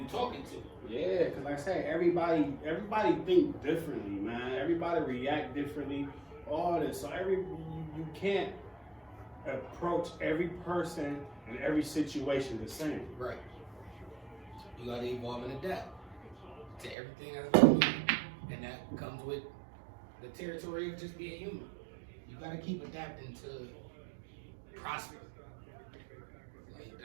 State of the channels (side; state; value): left; drops out; at 16.9 s